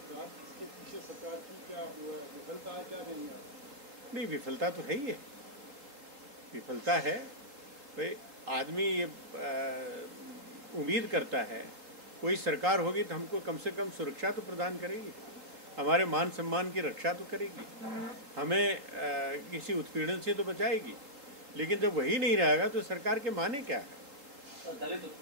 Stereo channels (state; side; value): late; left; 3.7 ms